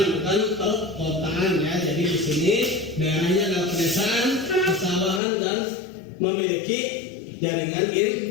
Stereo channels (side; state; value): right; drops out; at 5.2 s